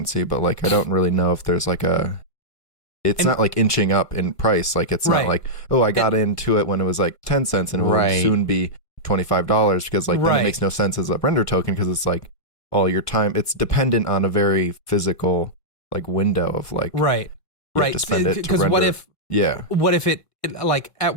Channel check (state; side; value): late; right; 1.1 ms